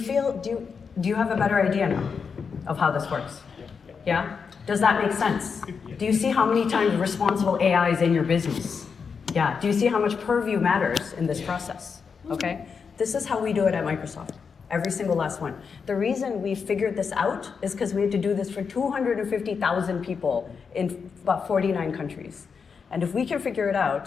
have a better idea now of how this works? Yeah? Does that make sense? Do you see how many times responsible AI is in your business? Yeah. Do you see how much Purview matters in this process? Okay? This is how we do it at Microsoft. Every single last one. The reason we figured this out is because we had to do this for 250,000 people in about 49 countries. And if we can figure it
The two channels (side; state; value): right; quieter; 5.8 dB